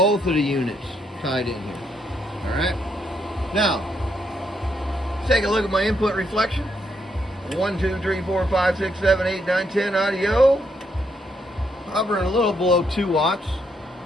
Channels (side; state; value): both; normal; correlation 0.76